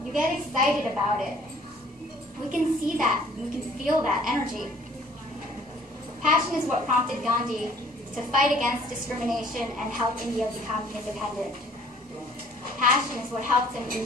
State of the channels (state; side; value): normal; both; correlation 0.56